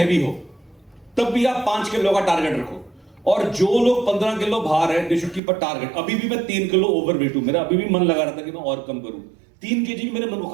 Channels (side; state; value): left; drops out; at 5.4 s